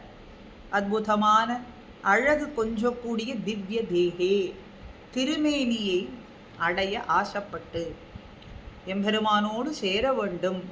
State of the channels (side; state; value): both; identical; correlation 1.00